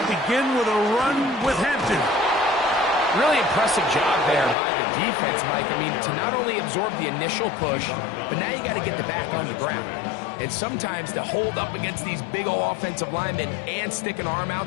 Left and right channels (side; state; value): right; drops out; at 4.5 s